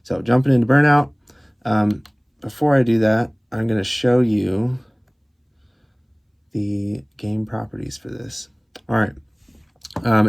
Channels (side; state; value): both; identical; correlation 1.00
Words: So jumping into Burnout, before I do that, I'm going to show you the game properties for this. All right.